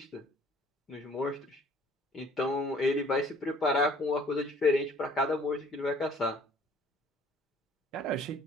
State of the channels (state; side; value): normal; both; correlation 0.55